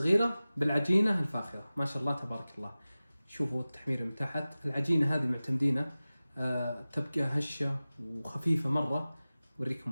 بالعجينة الفاخرة، ما شاء الله تبارك الله. شوفوا التحمير من تحت. العجينة هذه معتمدينه تبقى هشة وخفيفة مرة.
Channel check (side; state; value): both; inverted; correlation -0.97